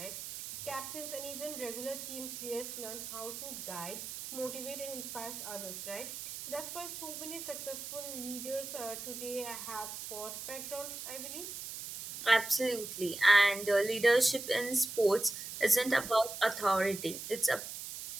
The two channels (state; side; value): noise; right; hiss, 8 dB below the sound